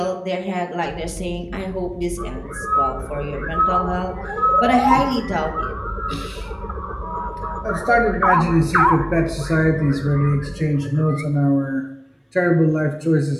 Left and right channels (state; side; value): identical; both; correlation 1.00